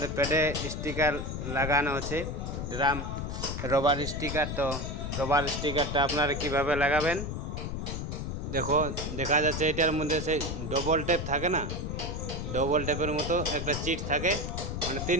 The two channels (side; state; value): left; noise; rumble, 4 dB below the sound